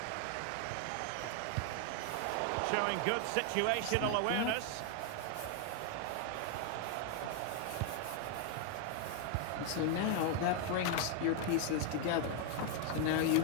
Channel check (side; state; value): both; different; correlation 0.01